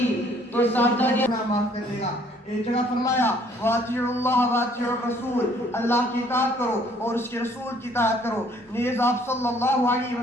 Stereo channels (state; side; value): normal; both; correlation 0.61